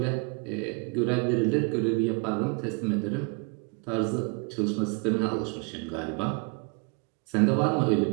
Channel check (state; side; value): quieter; left; 34.3 dB